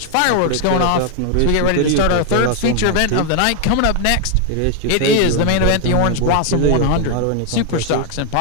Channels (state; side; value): different; both; correlation 0.00